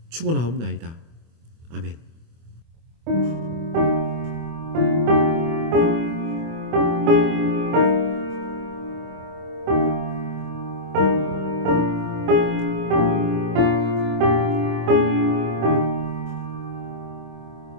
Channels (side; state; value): left; late; 25 ms